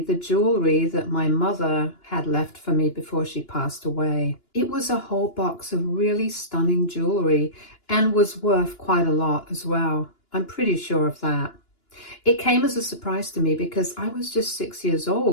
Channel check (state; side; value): late; right; 2.9 ms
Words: the jewelry that my mother had left for me before she passed away. It was a whole box of really stunning jewelry and was worth quite a lot as well. I'm pretty sure of that. It came as a surprise to me because I was just 6 years